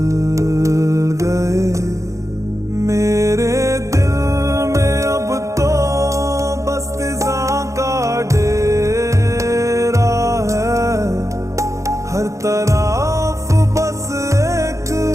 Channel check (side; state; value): left; late; 0.15 ms